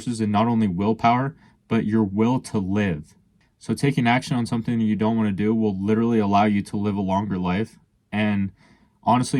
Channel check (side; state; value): both; identical; correlation 1.00